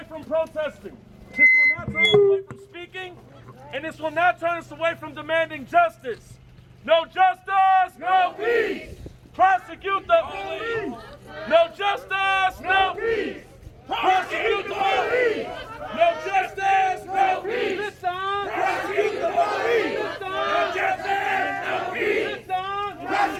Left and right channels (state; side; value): identical; both; correlation 1.00